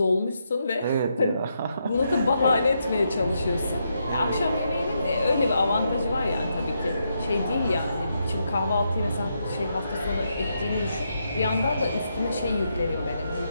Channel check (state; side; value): inverted; both; correlation -0.81